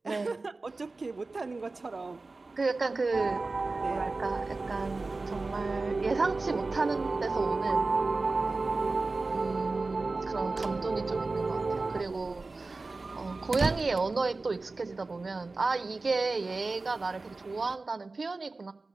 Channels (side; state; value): left; quieter; 3.5 dB